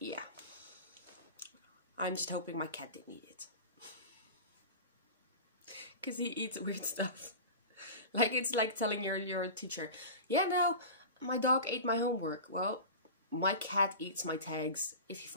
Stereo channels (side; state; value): both; inverted; correlation -0.31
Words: I'm just hoping my cat didn't eat it, because he eats weird stuff. Like, it's like telling your teacher, yeah, no, my dog ate my homework. Well, my cat eats my tags if he